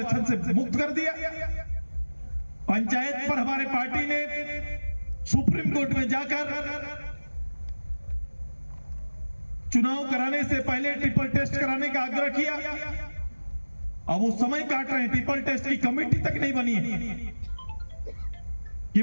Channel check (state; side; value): inverted; both; correlation -1.00